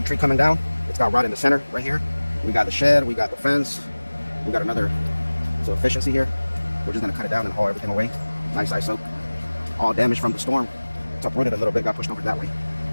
tree coming down. It's got rot in the center right here. We got the shed, we got the fence, we got another efficiency here. We're just gonna cut it down and haul everything away. Nice ice oak. All damaged from the storm. It's uprooted a little bit, got pushed over that way.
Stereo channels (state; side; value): inverted; both; correlation -1.00